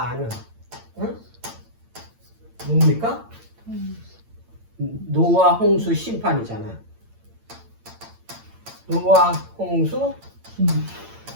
아는, 응? 뭡니까? 노아 홍수 심판이잖아. 노아 홍수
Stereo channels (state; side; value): late; left; 8.8 ms